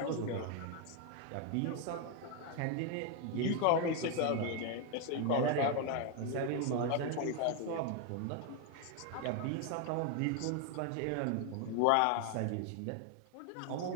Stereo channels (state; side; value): different; both; correlation 0.01